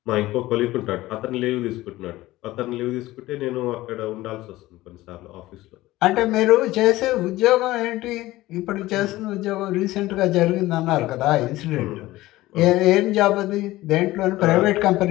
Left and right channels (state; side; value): quieter; right; 17.4 dB